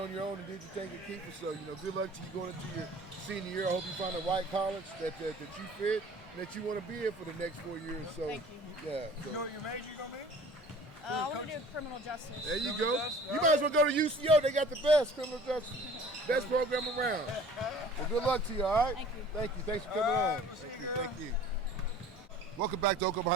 your own and did your thing at Kiefer. So, good luck to you going into your senior year. I hope you find the right college that you fit and that you want to be in for the next 4 years. So, Thank you. yeah. So. You know what your major going to be? I want to do criminal justice. There you go. You might as well go to UCO. They got the best criminal justice. Best program around. Well, good luck to you, all right? Thank you. Thank you. Thanks for coming on. Thank you. Welcome back to Oklahoma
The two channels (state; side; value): normal; both; correlation 0.47